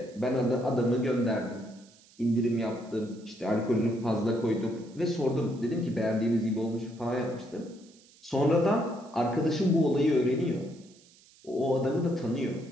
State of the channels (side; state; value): right; noise; hiss, 27 dB below the sound